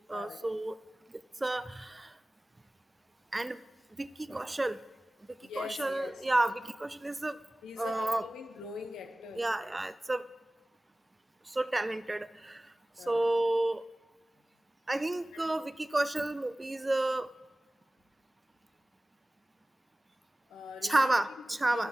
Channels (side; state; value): both; normal; correlation 0.98